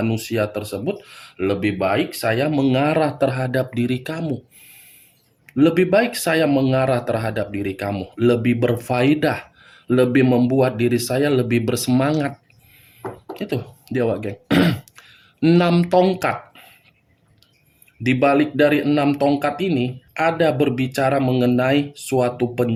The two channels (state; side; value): identical; both; correlation 1.00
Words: tersebut, lebih baik saya mengarah terhadap diri kamu. Lebih baik saya mengarah terhadap diri kamu, lebih berfaedah, lebih membuat diri saya lebih bersemangat. Itu dia, Wak Geng. 6 tongkat. Di balik dari 6 tongkat ini ada berbicara mengenai suatu